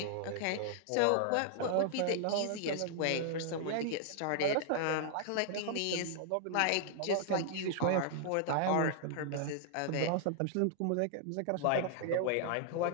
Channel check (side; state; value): both; different; correlation -0.01